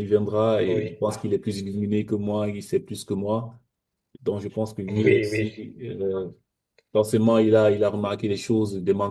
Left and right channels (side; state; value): both; identical; correlation 1.00